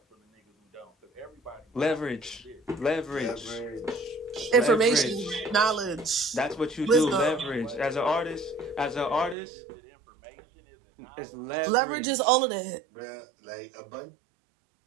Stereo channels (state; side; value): drops out; left; at 9.3 s